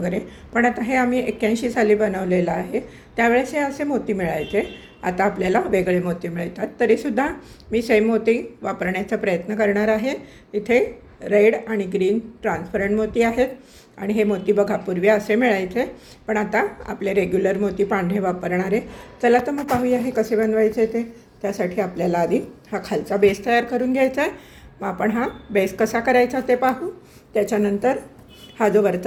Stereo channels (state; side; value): identical; both; correlation 1.00